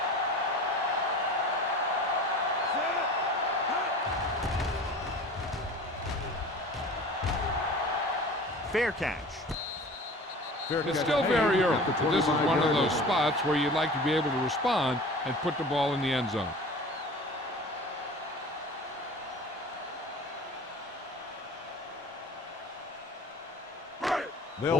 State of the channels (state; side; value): normal; both; correlation 0.40